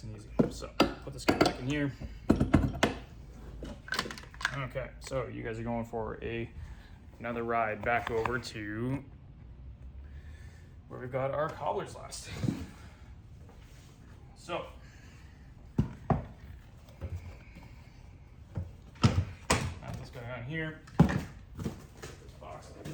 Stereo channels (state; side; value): identical; both; correlation 1.00